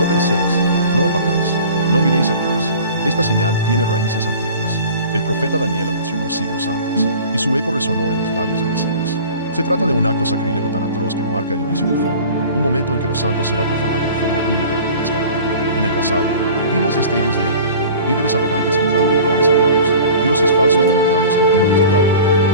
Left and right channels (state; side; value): inverted; both; correlation -0.42